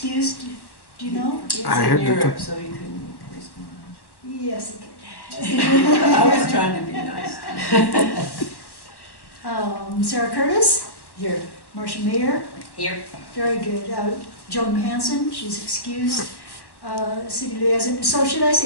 Do you know? I heard that. Europe, so he couldn't respond. Yes, he I was trying to be nice. could. Sarah Curtis, Here. Marcia Mayer, Here. very good. Joan Hanson, she's excused. City liaison, so should I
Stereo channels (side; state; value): right; late; 1.1 ms